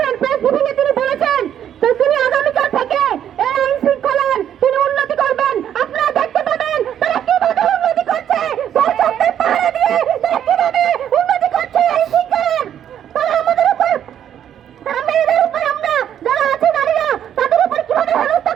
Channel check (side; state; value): left; quieter; 9.9 dB